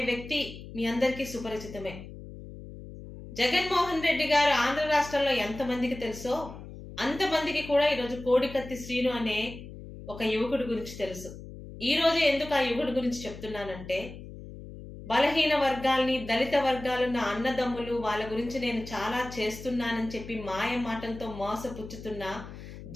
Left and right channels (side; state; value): left; noise; hum, 13 dB below the sound